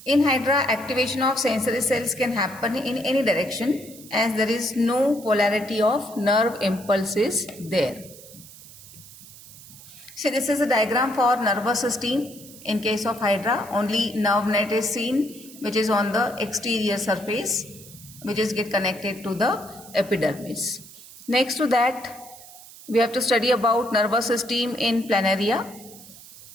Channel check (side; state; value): right; noise; hiss, 19 dB below the sound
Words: In Hydra, activation of sensory cells can happen in any direction, as there is no polarity of nerve impulses there. So this is a diagram for nervous system. In case of Hydra, only nerve net is seen, which is on the exterior surface, which is get connected to the epidermis. Next to that, we have to study about nervous system in Planaria.